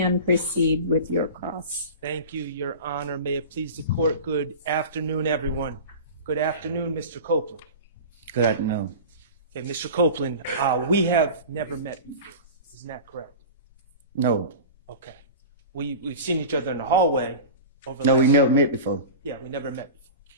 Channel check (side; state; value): both; inverted; correlation -0.33